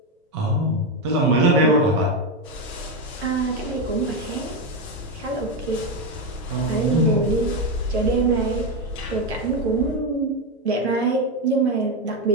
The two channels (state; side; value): normal; both; correlation 0.09